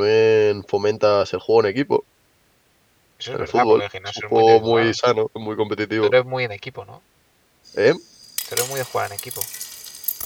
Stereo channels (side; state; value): both; identical; correlation 1.00